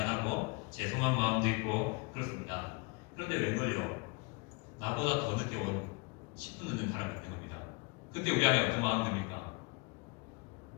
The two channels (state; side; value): quieter; right; 29.8 dB